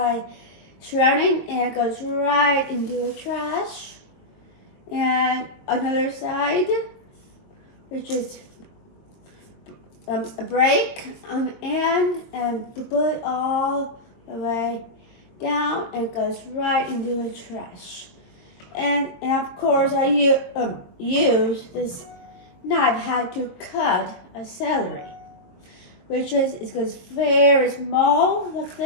shredding, and it goes right into the trash. And another side, which is a break on the end, and put it all the way down, and it goes right into the trash. And of course, I use this knife how to cut a celery, which is it goes very small like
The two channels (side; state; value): right; late; 22 ms